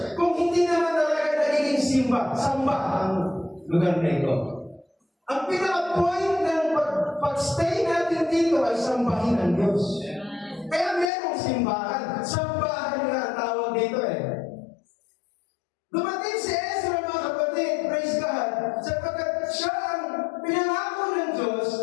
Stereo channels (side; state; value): right; drops out; at 11.1 s